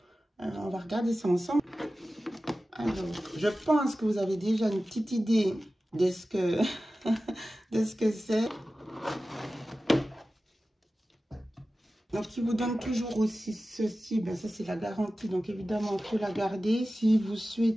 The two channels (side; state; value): both; normal; correlation 0.95